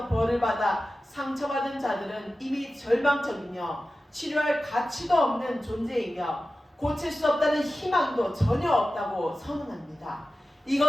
벌을 받아 상처받은 자들은 이미 절망적이며 치료할 가치도 없는 존재이며 고칠 수 없다는 희망도 전혀 없다고 선언합니다.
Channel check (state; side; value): normal; both; correlation 0.94